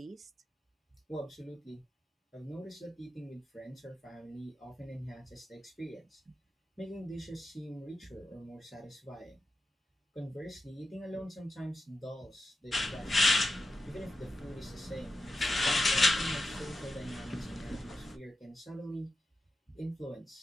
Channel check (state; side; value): normal; both; correlation 0.90